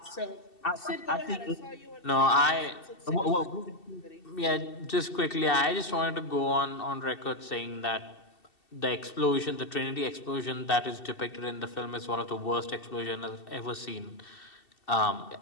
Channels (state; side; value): late; right; 2.7 ms